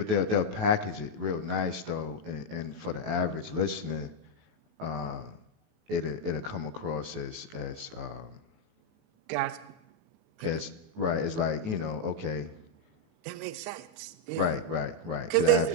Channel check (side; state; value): left; late; 19 ms